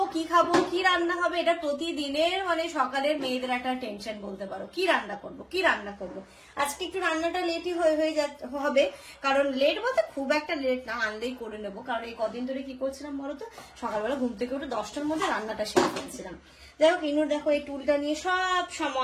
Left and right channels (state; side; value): identical; both; correlation 1.00